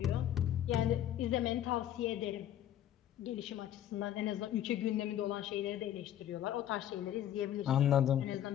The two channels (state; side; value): quieter; right; 11.4 dB